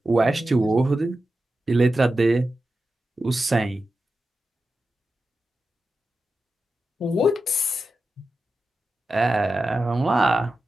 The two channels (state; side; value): normal; both; correlation 0.91